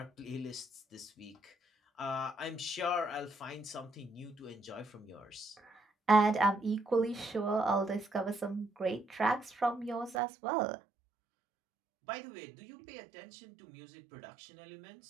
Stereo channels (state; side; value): drops out; left; at 10.2 s